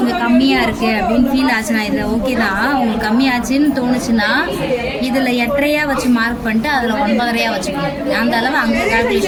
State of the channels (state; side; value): identical; both; correlation 1.00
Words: கம்மியாக இருக்குது அப்படின்னு ஃபீல் ஆச்சுன்னா, இதில் ஓகே தான். உங்களுக்கு கம்மியாச்சுன்னு தோணுச்சுன்னா இதில் 8.5 வச்சு மார்க் பண்ணிட்டு அதில் 9.5 வச்சுக்கணும். அந்த அளவு அங்கே